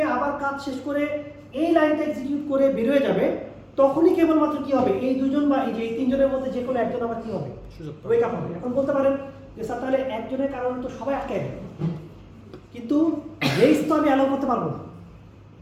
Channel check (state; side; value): identical; both; correlation 1.00